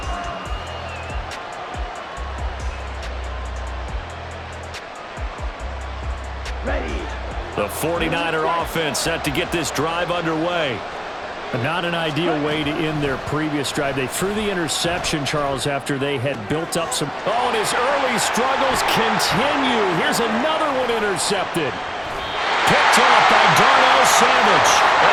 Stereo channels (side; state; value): both; identical; correlation 1.00